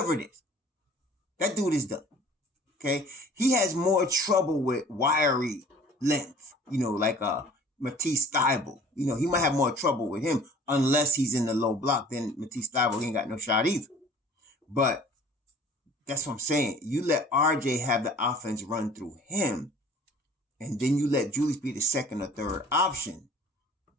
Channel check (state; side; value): normal; both; correlation 0.49